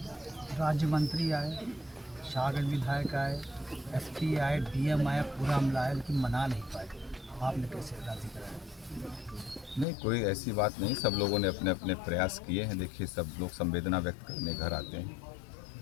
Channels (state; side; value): drops out; right; at 9.9 s